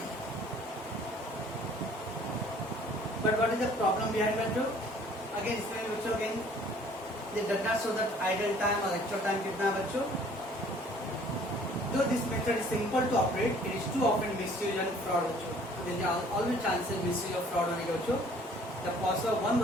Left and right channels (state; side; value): normal; both; correlation 0.55